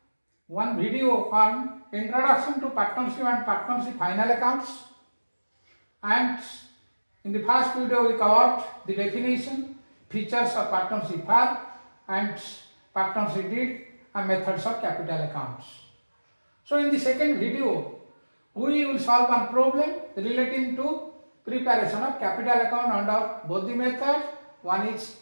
one video on introduction to partnership and partnership final accounts, and in the first video we covered the definition, features of partnership firm and partnership deed and methods of capital accounts. So in the second video we will solve one problem relating to preparation of capital account under both the methods. One is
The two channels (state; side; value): inverted; both; correlation -1.00